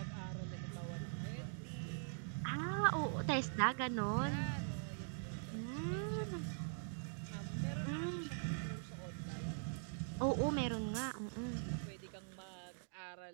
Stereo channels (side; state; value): left; silent; digital silence